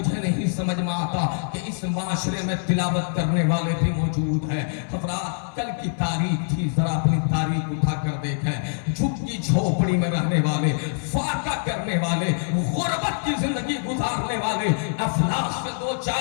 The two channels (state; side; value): silent; right; 62 dB below the other